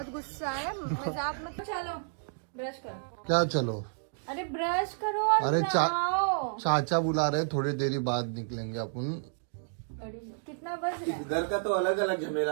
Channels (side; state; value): left; silent; digital silence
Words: गुस्सा है, मजाक मत। चलो ब्रश करो। क्या चलो? अरे ब्रश करो और अरे नहाओ। चाचा बुला रहे, थोड़ी देरी बाद निकलेंगे अपन। कितना बज रहा है? घर का तो अलग अलग